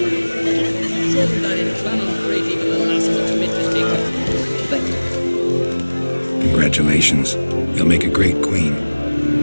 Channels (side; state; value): both; inverted; correlation -1.00